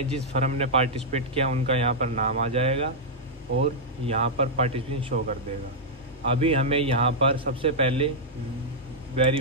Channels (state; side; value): normal; both; correlation -0.07